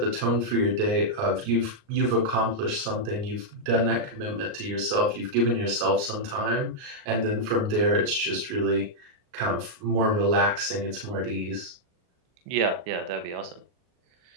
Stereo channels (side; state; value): left; late; 38 ms